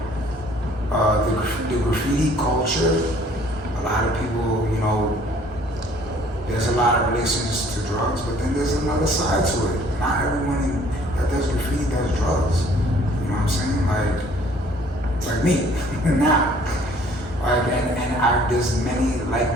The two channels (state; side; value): normal; both; correlation 0.57